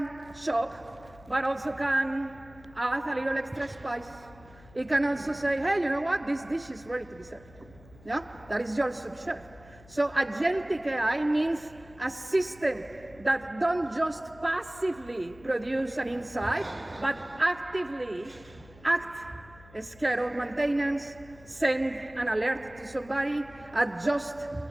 shop, but also can add a little extra spice. It can also say, hey, you know what? This dish is ready to be served. Yeah, that is your sous chef. So agentic AI means a system that don't just passively produce an insight, but actively act, schedule maintenance, send an alert to somebody, adjust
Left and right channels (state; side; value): noise; left; hum, 23 dB below the sound